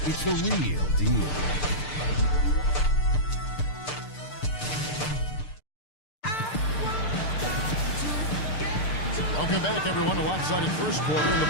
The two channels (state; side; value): late; right; 6.7 ms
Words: It's the real deal. Welcome back, everyone, to lopsided first quarter in the